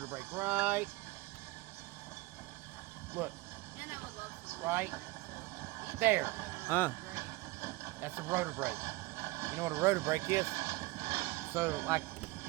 brake right. Look. And I would love some. Right there. Great. That's the rotor brake. You know what a rotor brake is? So, like,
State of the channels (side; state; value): left; quieter; 21.3 dB